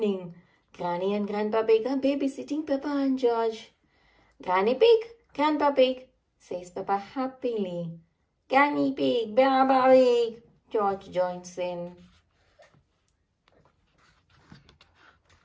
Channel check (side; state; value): both; identical; correlation 1.00